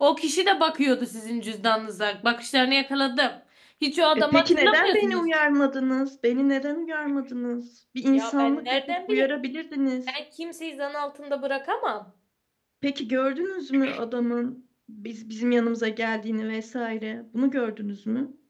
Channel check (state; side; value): identical; both; correlation 1.00